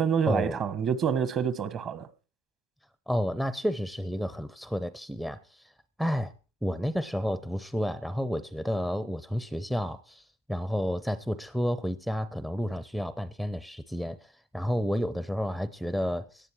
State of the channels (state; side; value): normal; both; correlation 0.86